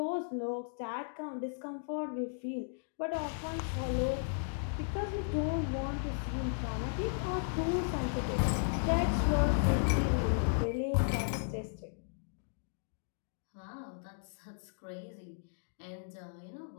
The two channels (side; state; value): right; silent; digital silence